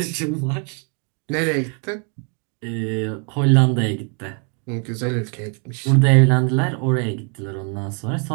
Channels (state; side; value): quieter; left; 38.8 dB